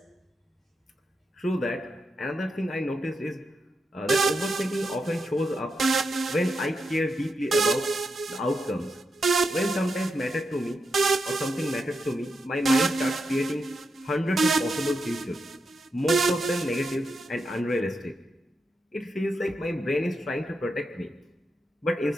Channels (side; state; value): both; normal; correlation 0.85